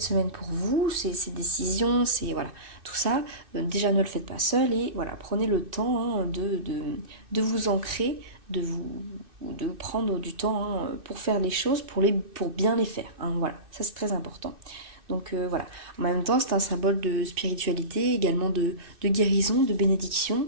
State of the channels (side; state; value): left; late; 2.6 ms